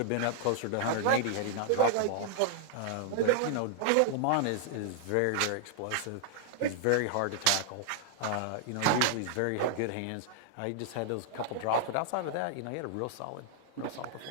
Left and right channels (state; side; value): different; both; correlation 0.00